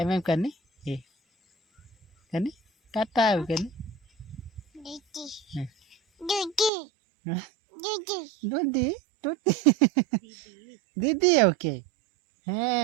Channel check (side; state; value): left; drops out; at 6.7 s